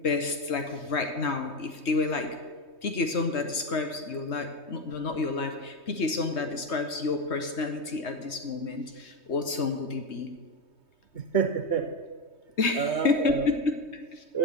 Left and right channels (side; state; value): right; late; 3.2 ms